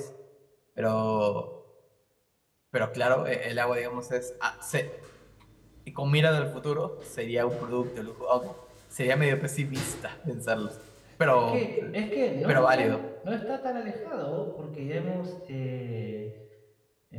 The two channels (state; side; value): identical; both; correlation 1.00